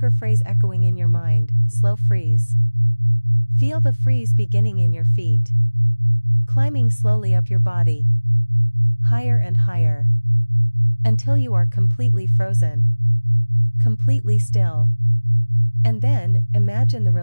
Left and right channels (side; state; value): both; inverted; correlation -1.00